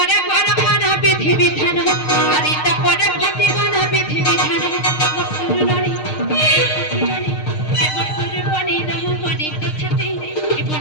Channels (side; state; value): right; late; 6.5 ms